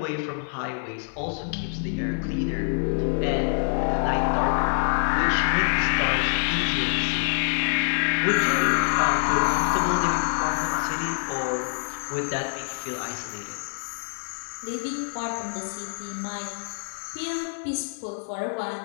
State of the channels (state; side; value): silent; right; digital silence